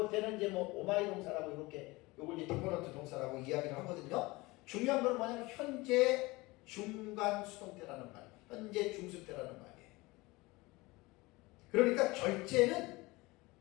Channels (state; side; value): quieter; right; 22.3 dB